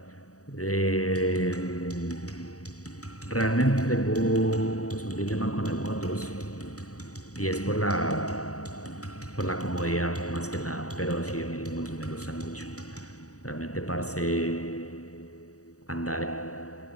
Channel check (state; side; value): late; right; 0.66 ms